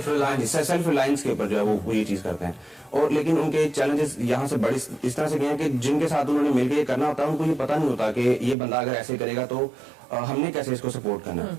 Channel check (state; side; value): drops out; left; at 8.6 s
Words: ریلائنس کے اوپر جو ہے وہ یہ چیز کرتے ہیں. اور لیکن ان کے چیلنجز یہاں سے بڑی اس طرح سے گئے ہیں کہ جن کے ساتھ انہوں نے مل کے یہ کرنا ہوتا ہے ان کو یہ پتہ نہیں ہوتا کہ یہ بندہ اگر ایسے کرے گا تو ہم نے کیسے اس کو سپورٹ کرنا ہے.